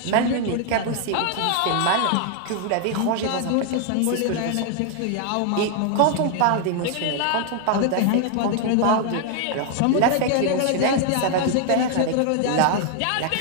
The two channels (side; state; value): both; different; correlation 0.00